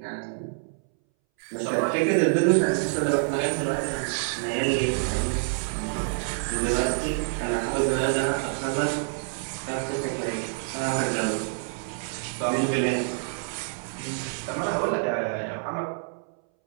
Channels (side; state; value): left; silent; 60 dB below the other